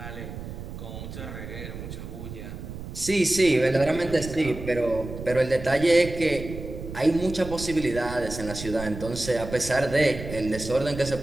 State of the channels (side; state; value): right; noise; rumble, 10 dB below the sound